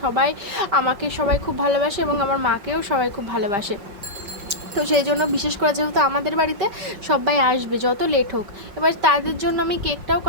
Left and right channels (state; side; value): late; left; 5.4 ms